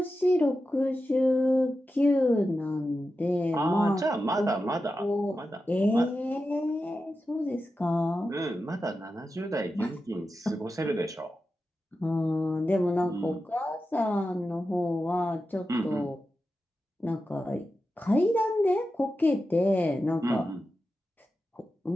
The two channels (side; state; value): both; normal; correlation 0.91